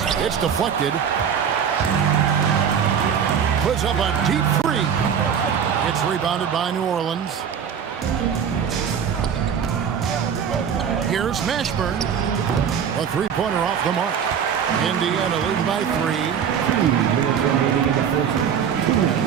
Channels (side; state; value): left; quieter; 7.7 dB